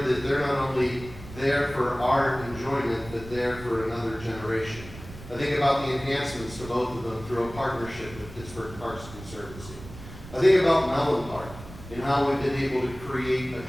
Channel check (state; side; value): noise; right; rumble, 15 dB below the sound